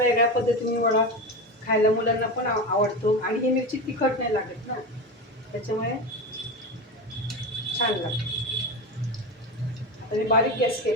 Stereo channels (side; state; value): both; normal; correlation 0.22